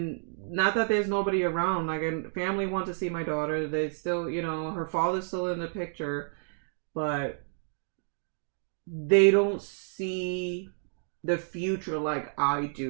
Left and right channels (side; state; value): left; silent; digital silence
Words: not that there's nobody around, like, and family want to see my daughter. They still, her father's still in the picture, but they don't see the future like I